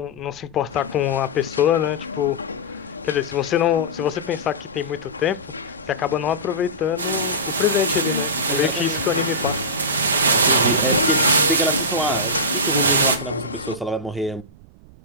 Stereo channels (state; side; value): noise; right; rumble, 23 dB below the sound